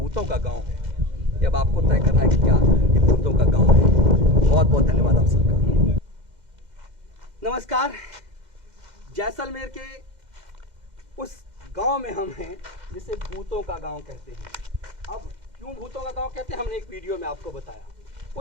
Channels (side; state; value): left; late; 2.1 ms